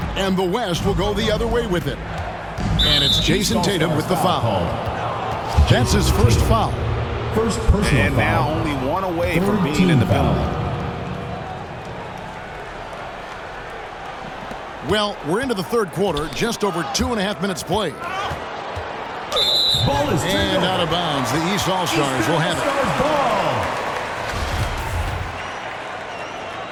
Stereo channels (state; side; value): identical; both; correlation 1.00